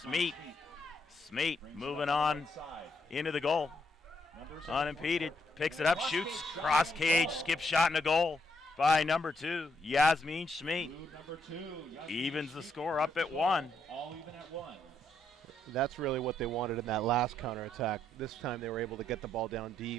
Smeet moving on into the goal. Unimpeded. Picks it up, shoots. Cross cage, skip shot in the goal by number 2, Yasmin Smeet. Evens the score up at 1. That's really what they wanted in that last counterattack. This time they were able to get the ball down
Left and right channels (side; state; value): both; normal; correlation 0.76